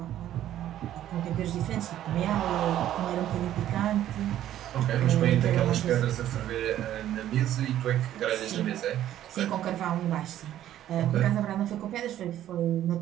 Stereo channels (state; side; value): quieter; left; 12.1 dB